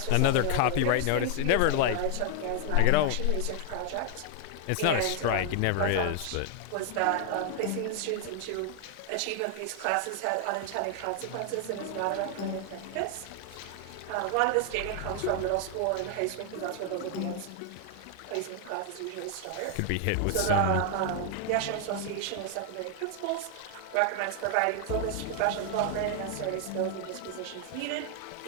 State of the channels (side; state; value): both; different; correlation 0.00